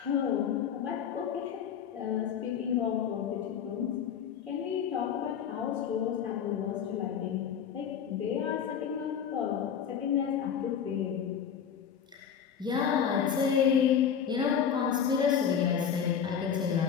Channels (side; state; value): right; quieter; 8.0 dB